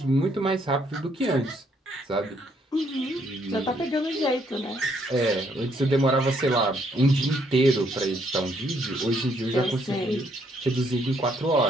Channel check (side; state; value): both; normal; correlation 0.70